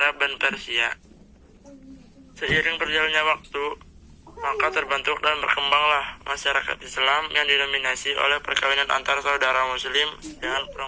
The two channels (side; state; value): both; identical; correlation 1.00